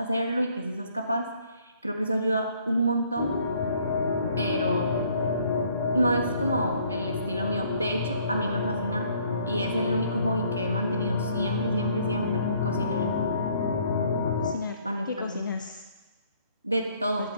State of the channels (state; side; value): inverted; both; correlation -0.63